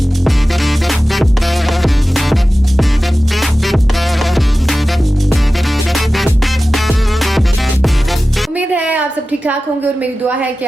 उम्मीद है आप सब ठीक ठाक होंगे और मेरी दुआ है कि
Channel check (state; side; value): normal; both; correlation 0.95